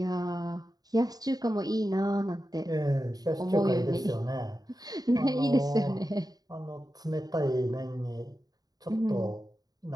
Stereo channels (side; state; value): left; late; 0.18 ms